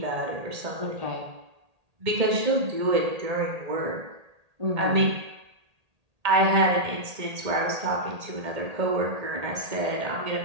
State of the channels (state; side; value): late; left; 1.8 ms